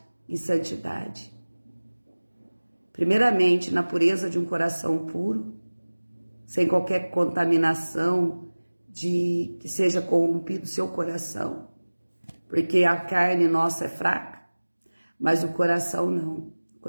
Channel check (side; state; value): both; inverted; correlation -1.00